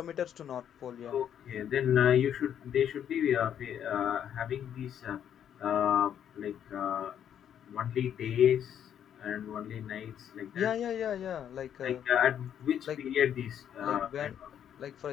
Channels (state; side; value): quieter; right; 9.4 dB